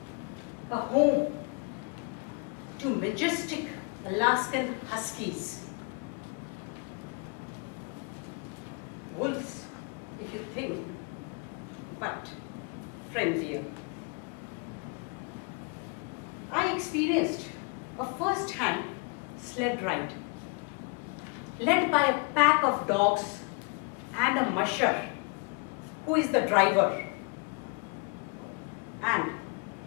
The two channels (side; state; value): right; quieter; 32.3 dB